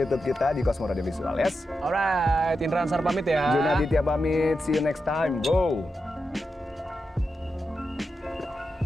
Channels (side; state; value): both; normal; correlation 0.88